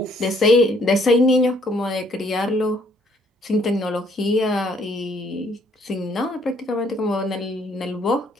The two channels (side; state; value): both; normal; correlation 0.65